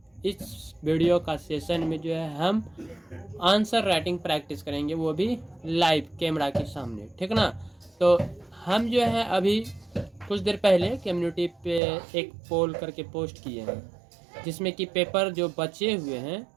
इस वीडियो का सेशन में जो है हम आंसर राइटिंग प्रैक्टिस करेंगे, वो भी लाइव कैमरा के सामने, ठीक ना। तो हम जो है अभी कुछ देर पहले कम्युनिटी पे एक पोल करके पोस्ट किए हैं, जिसमें कि पेपर जो बचे हुए हैं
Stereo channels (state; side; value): drops out; left; at 11.8 s